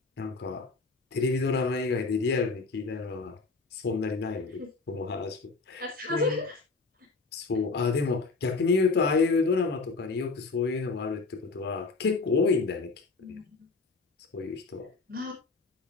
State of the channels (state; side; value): quieter; right; 4.0 dB